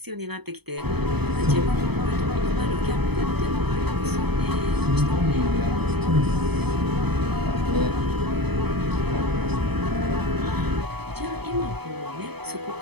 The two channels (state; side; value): late; left; 0.98 ms